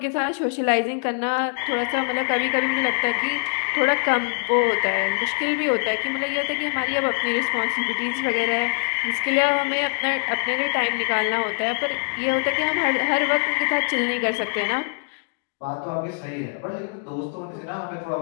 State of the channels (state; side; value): silent; right; digital silence